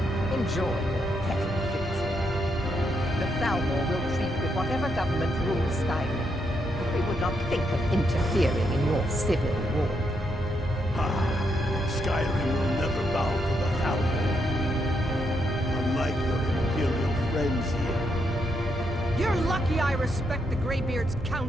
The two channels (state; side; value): normal; both; correlation 0.79